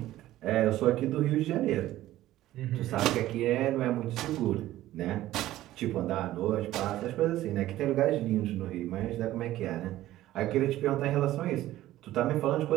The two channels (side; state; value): left; quieter; 14.8 dB